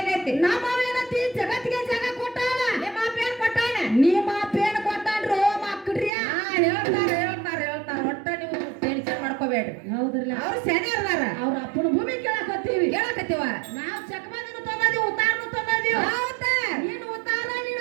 ನಮ್ಮ ಏನತಿ ಜಗತ್ತಿಗೆ ಜಾಗ ಕೊಟ್ಟಾನ ನಿಮ್ಮ ಅಪ್ಪ ಏನ್ ಕೊಟ್ಟಾನ ನಿಮ್ಮ ಪೇನ್ ಕೊಟ್ಟಾನ್ರು ಮಕ್ಕಳ್ರಿ ಹೇಳ್ತಾರ ಒಟ್ಟ ನೀವು ಟೆನ್ಷನ್ ಮಾಡ್ಕೋಬೇಡ್ರಿ ಹೌದ್ರಲ್ಲ ಅವ್ರು ಸೆನಿಯರ್ದಾರ ಅವ್ರ ಅಪ್ಪನ ಭೂಮಿ ಕೇಳಕತ್ತೀವಿ ಕೇಳಕತ್ತೀವ ನಾವು ಚಕಮಂದಿನ ತಂದೀವಿ ಉತ್ತಾರನು ತಂದೀವಿ ಹೌದಾ ನೀನು ಉತ್ತಾರ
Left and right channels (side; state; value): left; drops out; at 6.1 s